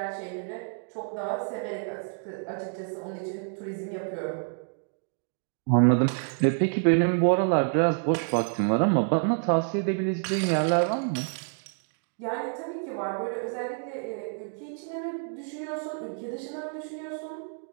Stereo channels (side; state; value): left; silent; 59 dB below the other